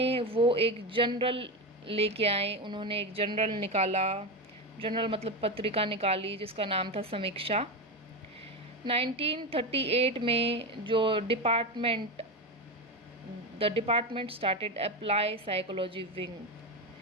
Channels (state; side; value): normal; both; correlation 0.16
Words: वो एक जर्नल लेके आए, उन्होंने एक जर्नल निकाला, जर्नल मतलब पत्रिका निकाली जिसका नाम था समीक्षा। 1938 में जो the department started apply psychology wing,